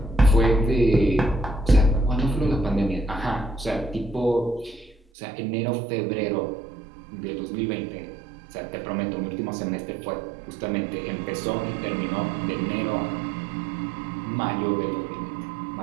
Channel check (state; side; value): drops out; left; at 5.0 s